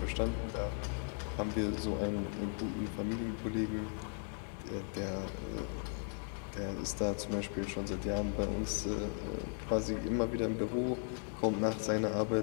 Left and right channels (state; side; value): silent; right; 53 dB below the other